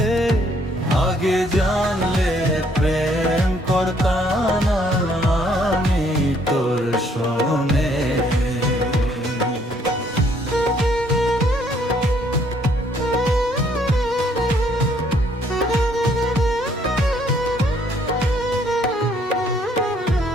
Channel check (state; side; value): normal; both; correlation 0.66